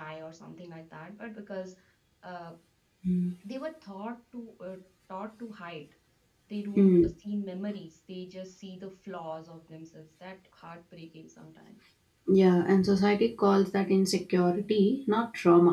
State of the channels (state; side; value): identical; both; correlation 1.00